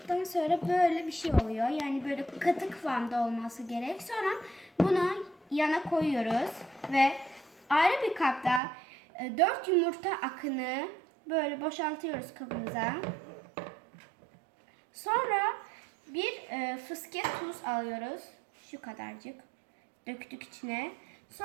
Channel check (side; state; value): left; drops out; at 8.6 s